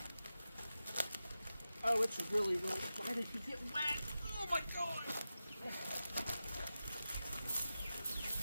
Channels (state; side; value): inverted; both; correlation -0.92